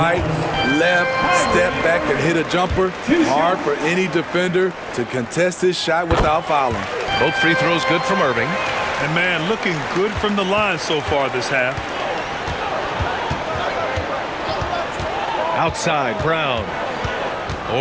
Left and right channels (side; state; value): both; identical; correlation 1.00